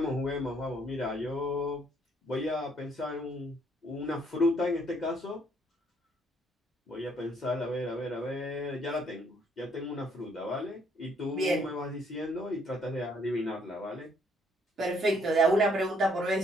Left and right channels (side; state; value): both; normal; correlation 0.67